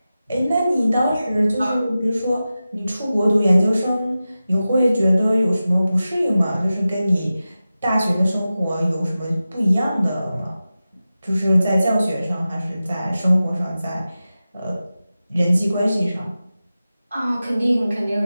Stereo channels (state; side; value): inverted; both; correlation -0.94